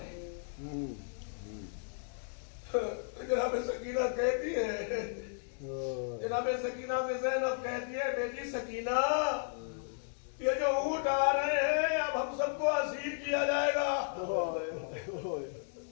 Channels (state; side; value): silent; right; digital silence